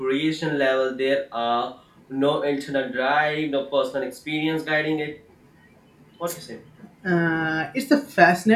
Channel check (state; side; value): identical; both; correlation 1.00